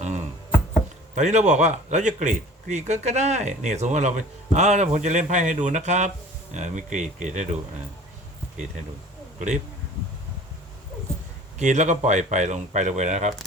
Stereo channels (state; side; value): normal; both; correlation 0.46